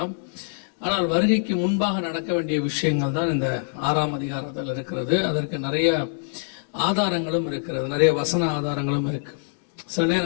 ஆனால் வருகைக்கு முன்பாக நடக்க வேண்டிய விஷயங்கள் தான் இந்த 6ஆம் அதிகாரத்தில் இருக்கிறது. அதற்கு நிறைய ஆதாரங்களும் இருக்கிறது, நிறைய வசன ஆதாரங்களும் இருக்கு. சில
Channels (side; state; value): right; silent; digital silence